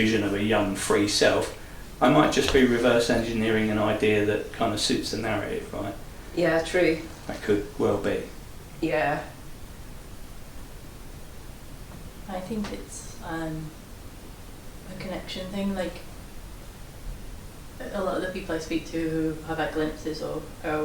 of a young free self, I might just be reverse engineering an idea that kind of suits the narrative, right? Yeah, true. That could well be. Yeah. I think it's a connection thing. Like, a lot of the people I speak to who have had glimpses or are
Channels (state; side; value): identical; both; correlation 1.00